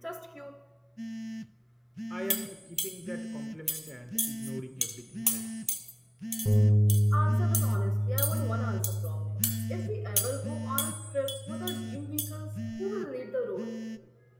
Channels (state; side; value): identical; both; correlation 1.00